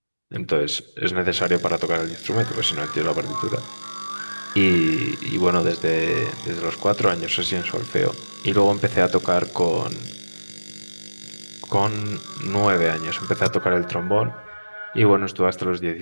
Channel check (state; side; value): inverted; both; correlation -1.00